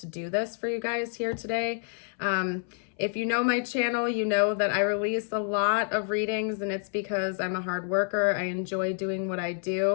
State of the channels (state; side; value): silent; right; 59 dB below the other